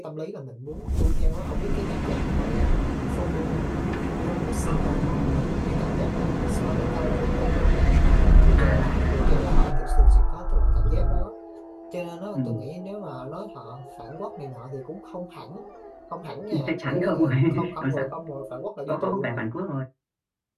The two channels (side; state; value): both; identical; correlation 1.00